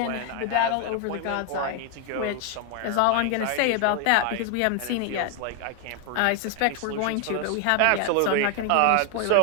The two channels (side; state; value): both; different; correlation 0.00